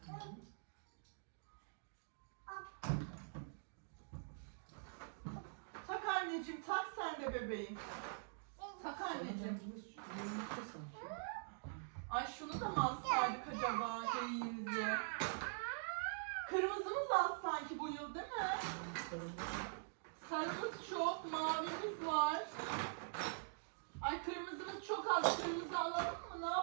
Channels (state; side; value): silent; left; digital silence